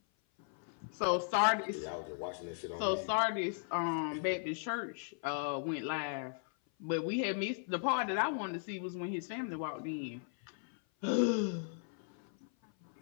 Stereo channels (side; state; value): right; silent; 53 dB below the other